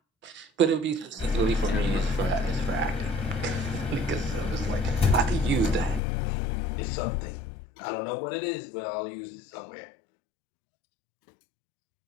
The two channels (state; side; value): drops out; right; at 6.0 s